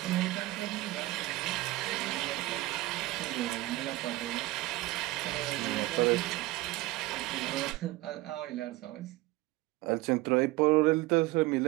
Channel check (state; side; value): quieter; left; 19.1 dB